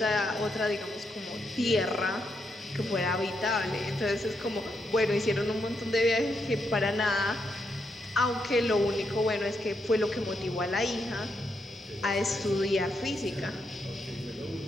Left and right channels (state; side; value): normal; both; correlation 0.81